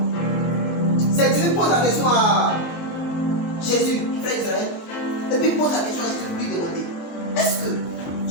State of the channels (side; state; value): right; late; 24 ms